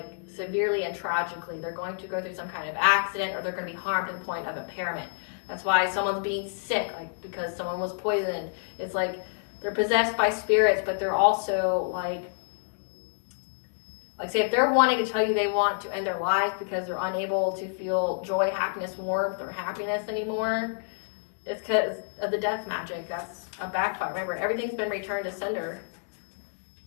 severely and tragically. They're going to go through some kind of accident, or they're going to be harmed to the point of impairment. That's why someone's being sick, because someone was poisoned. It's they're possessed by spirits, but they're also say if they're wanting to tell you they want to end their lives because they're unable to feel joy, happiness, warmth, or happiness anymore, it's because of the death magic. That's a backfire. Remember, everything's been returned to sender.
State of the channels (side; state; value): right; silent; digital silence